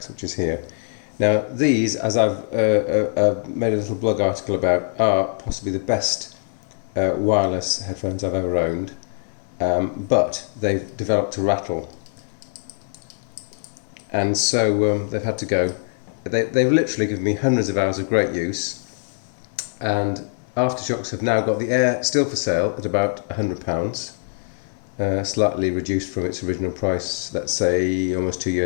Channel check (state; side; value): silent; right; 60 dB below the other